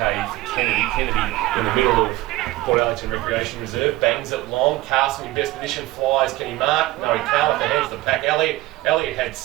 for Kennedy. Kennedy in the middle of Port Arlington Recreation Reserve, bangs it long. Carson in best position, flies. Can he mark? No, he can't. With the hands of the pack. Elliott had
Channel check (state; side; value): quieter; left; 18.0 dB